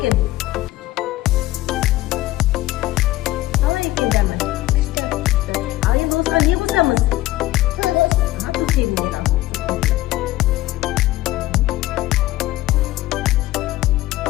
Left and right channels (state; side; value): quieter; right; 16.7 dB